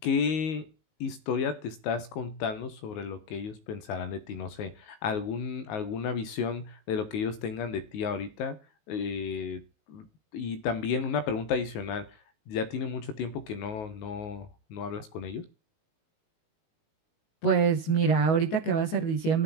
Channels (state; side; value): late; right; 19 ms